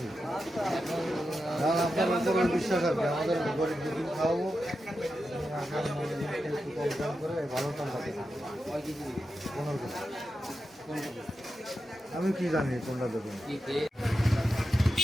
আপনার উপর বিশ্বাস আছে, আমাদের গরিব দুদিন খাওয়াবো, একটু কম দাম করে ভালো দাম পাবে। 15 কেজি। আমি কি জানি কোনটা দেবেন।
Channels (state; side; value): normal; both; correlation 0.89